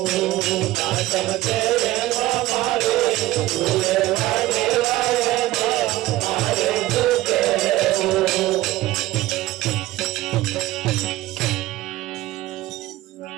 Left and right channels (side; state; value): left; quieter; 17.0 dB